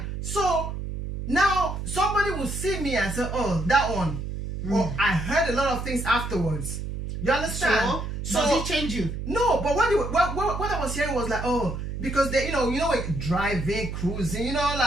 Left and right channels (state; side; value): noise; right; hum, 5 dB below the sound